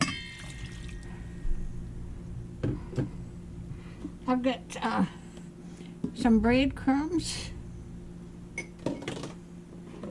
I've got some breadcrumbs.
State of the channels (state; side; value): identical; both; correlation 1.00